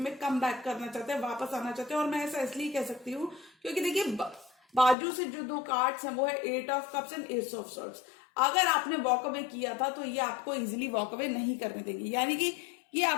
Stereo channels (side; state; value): right; drops out; at 5.0 s